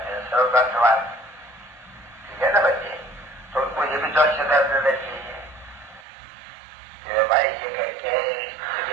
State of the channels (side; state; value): left; drops out; at 6.0 s